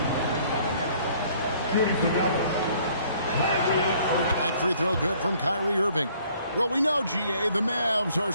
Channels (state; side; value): inverted; both; correlation -0.60